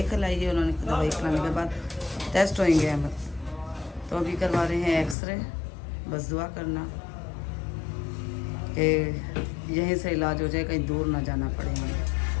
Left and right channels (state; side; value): drops out; right; at 5.2 s